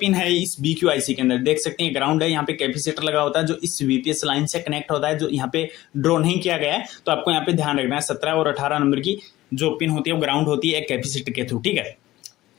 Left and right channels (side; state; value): right; quieter; 16.5 dB